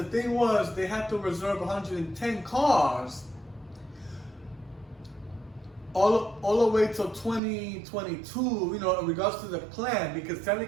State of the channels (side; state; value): left; drops out; at 7.4 s